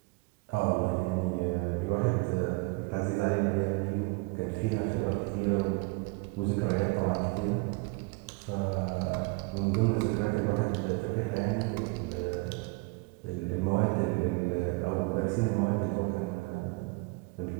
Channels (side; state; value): left; quieter; 27.1 dB